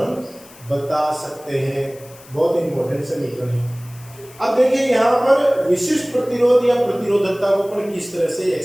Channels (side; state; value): left; noise; hiss, 22 dB below the sound